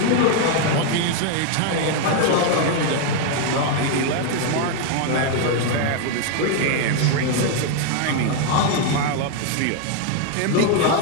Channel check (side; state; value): both; different; correlation 0.01